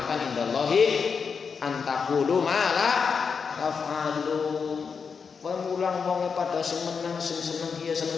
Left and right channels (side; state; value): right; quieter; 5.8 dB